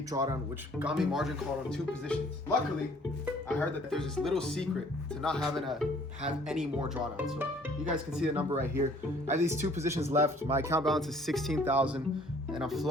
drawdown, which got me margin called on 2 positions. Luckily, I heard that there's this little secret to not having to have any more drawdown. So you guys can see the number right here. I have these 2 positions left. My account balance is 16,000, and I'm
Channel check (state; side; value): normal; both; correlation 0.57